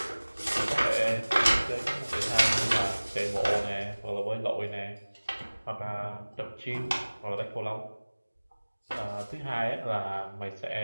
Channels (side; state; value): both; inverted; correlation -1.00